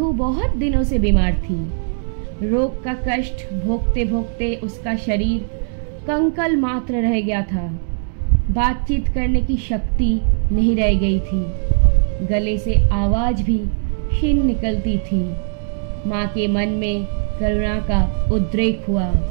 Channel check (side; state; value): left; silent; digital silence